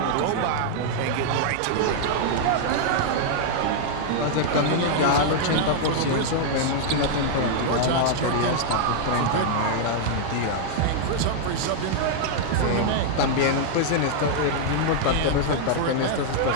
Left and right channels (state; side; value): different; both; correlation -0.01